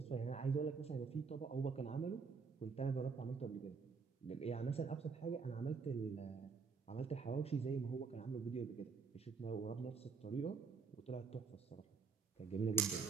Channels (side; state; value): left; quieter; 5.1 dB